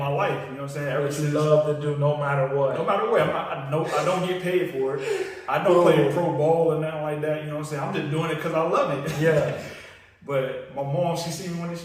life, you know what I'm saying? Ever What you since, love to do no matter what. no matter what, I don't get paid for it. I don't play pro ball or nothing like that, you know what I'm saying? I'm just doing it because I love it. Yeah. But my mom, she see me one day,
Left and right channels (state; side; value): identical; both; correlation 1.00